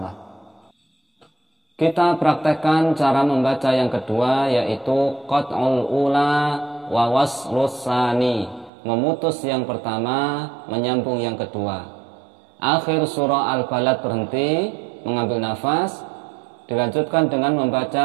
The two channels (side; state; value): left; drops out; at 8.7 s